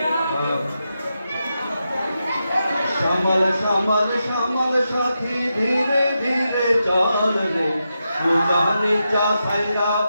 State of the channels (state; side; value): inverted; both; correlation -0.87